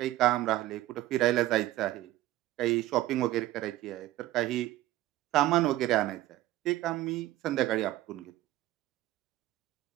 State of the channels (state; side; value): quieter; left; 15.7 dB